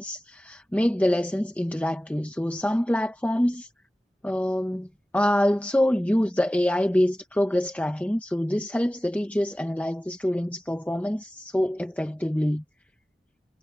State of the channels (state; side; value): normal; both; correlation 0.96